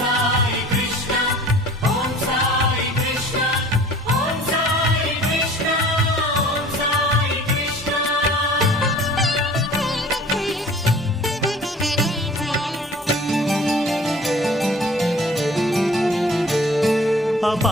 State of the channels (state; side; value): normal; both; correlation 0.47